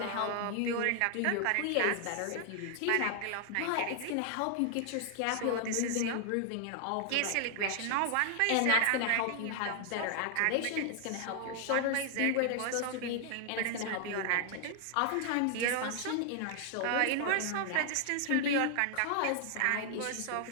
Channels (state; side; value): different; both; correlation 0.00